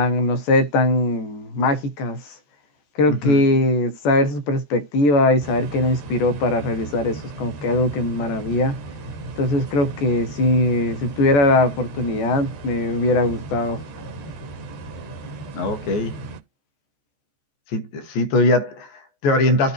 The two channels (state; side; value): late; right; 14 ms